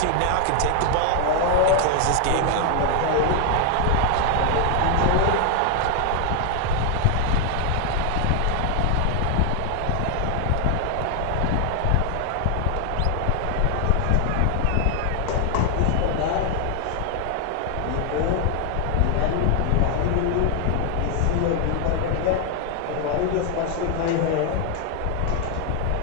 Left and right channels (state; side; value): different; both; correlation 0.00